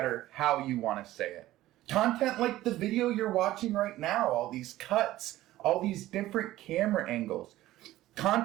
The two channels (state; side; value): quieter; left; 15.5 dB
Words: how you want to say it. Content like the video you're watching right now, all these cuts, all these different camera angles.